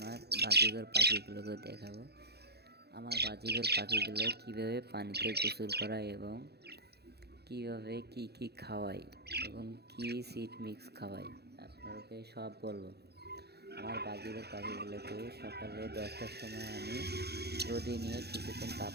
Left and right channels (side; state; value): left; late; 0.48 ms